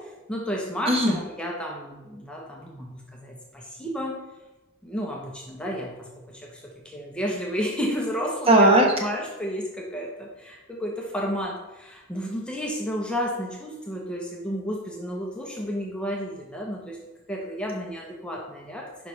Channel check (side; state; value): both; normal; correlation 0.26